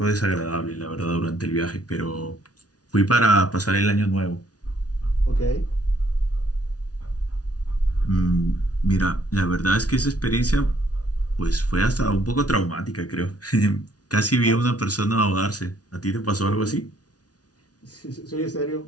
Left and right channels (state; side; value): late; right; 0.68 ms